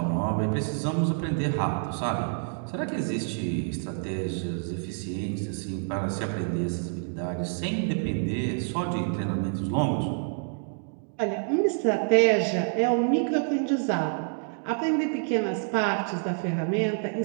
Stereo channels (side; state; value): left; silent; 60 dB below the other